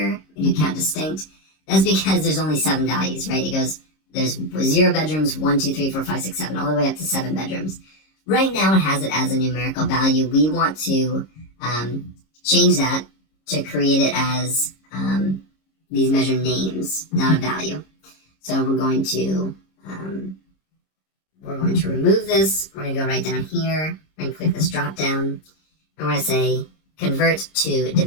we do count distinct. That's because there's only 7 values, right? It goes, there's 0 bedrooms, 1, 2, 3, 4, 5, 6, 7, all the way up to 7 bedrooms. Right now, it has it as a numerical value. We want to change that to create it as these measure names, not a value. So we're going to remove this. We're going to go right down here and click this drop down, and we're going to say convert to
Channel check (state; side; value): late; right; 26 ms